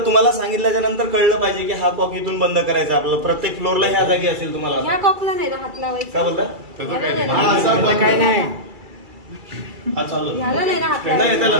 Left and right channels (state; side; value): late; left; 2.3 ms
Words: तुम्हाला सांगितल्याच्या नंतर कळलं पाहिजे की हा कॉक इथून बंद करायचा आपल्याला. प्रत्येक फ्लोअरला ह्या जागी असेल तुम्हाला. ह्या कॉकला नाही ना हात लावायचा. काय बोलता? ह्याला नाही ना. हा, असा बंद काय नाही हा चालू ह्याला नाही ना हात नाही, लावायचा. त्याला